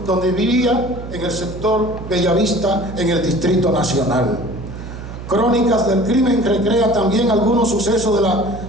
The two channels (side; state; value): right; noise; hum, 11 dB below the sound